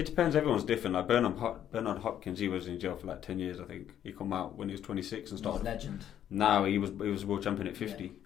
depends. Everyone's different. Like Bernard Hopkins, he was in jail for like 10 years. I think he come out when he was 26 and started. He's a legend. Now he was world champion at 50.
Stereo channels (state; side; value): quieter; right; 10.5 dB